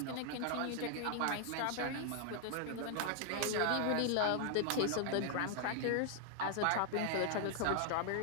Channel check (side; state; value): both; different; correlation 0.00